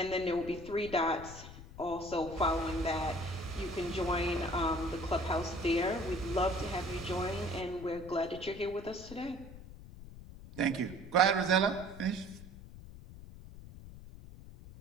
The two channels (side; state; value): left; noise; rumble, 15 dB below the sound